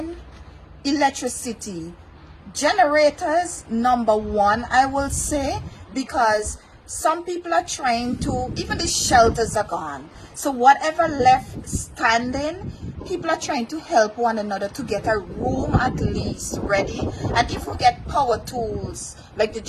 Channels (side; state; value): both; identical; correlation 1.00